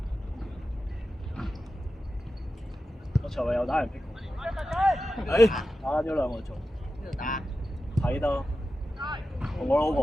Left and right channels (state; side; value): normal; both; correlation 0.92